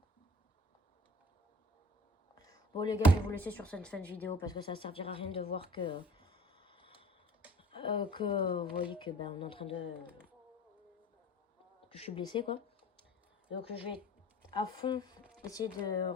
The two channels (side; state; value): both; normal; correlation 0.47